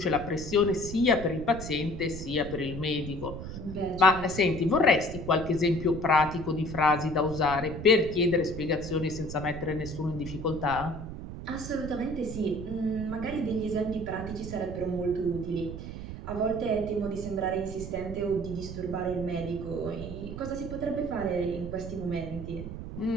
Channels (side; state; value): right; noise; rumble, 9 dB below the sound